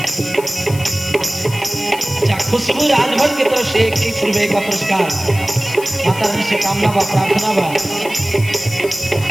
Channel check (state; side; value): noise; left; hiss, 14 dB below the sound